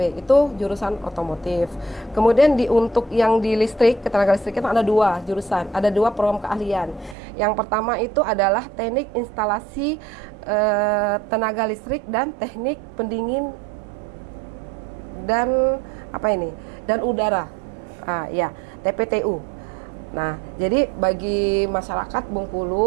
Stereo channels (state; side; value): drops out; left; at 7.2 s